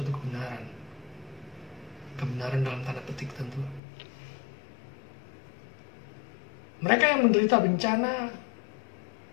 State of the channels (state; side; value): drops out; right; at 3.8 s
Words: kebenaran. Kebenaran dalam tanda petik tentu. Mereka yang menderita bencana